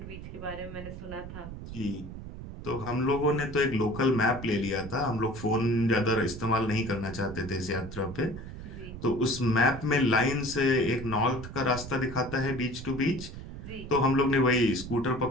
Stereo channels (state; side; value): noise; right; rumble, 11 dB below the sound